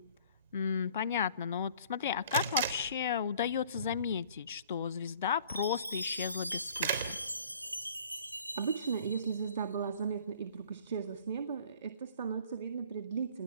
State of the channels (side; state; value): both; inverted; correlation -0.52